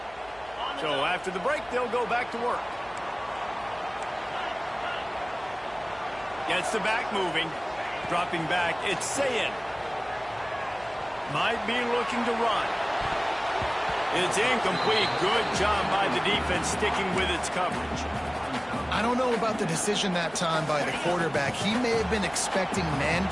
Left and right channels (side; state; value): left; noise; hum, 25 dB below the sound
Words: So after the break, they'll go back to work. Gets the back moving. Dropping back, it's Sayin. Might be looking to run. It's incomplete. Good job by the defense sticking with its coverage. I don't know about the decision that time by the quarterback. He may have been expecting man